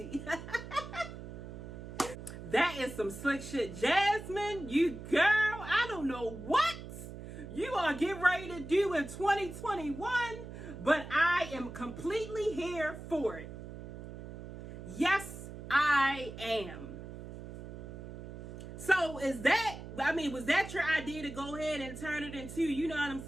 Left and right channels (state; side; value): noise; right; hum, 11 dB below the sound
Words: That is some slick shit. Jasmine, you girl, I don't know what you are getting ready to do in 2021, but I am completely here for it. Yes, I am. So was that your idea to go ahead and turn it into, you know what I'm